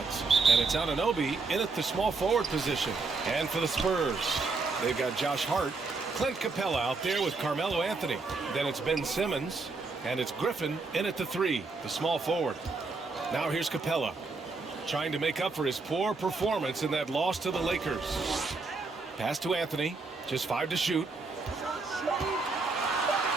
And it's Anunoby in at the small forward position. And for the Spurs, they've got Josh Hart, Clint Capella out there with Carmelo Anthony. Then it's Ben Simmons, and it's Griffin in at the 3, the small forward. Now here's Capella, trying to make up for his poor performance in that loss to the Lakers. Pass to Anthony, just 5 to shoot.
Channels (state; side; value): quieter; left; 3.9 dB